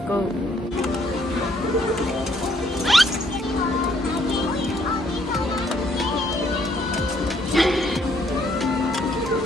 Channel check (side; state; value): both; normal; correlation 0.67